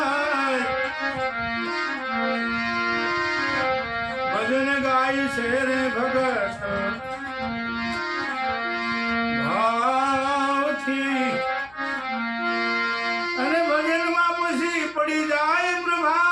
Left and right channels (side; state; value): left; noise; hum, 27 dB below the sound